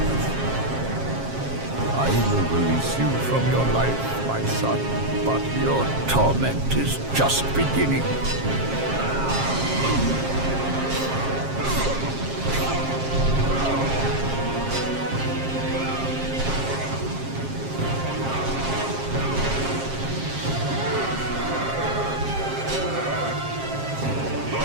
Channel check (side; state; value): left; late; 7.5 ms